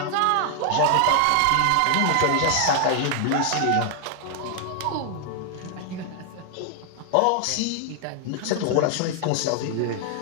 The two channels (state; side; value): different; both; correlation 0.00